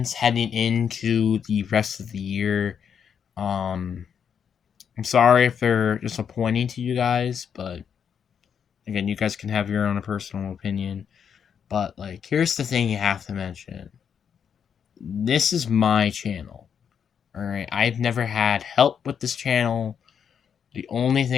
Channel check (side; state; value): right; quieter; 7.5 dB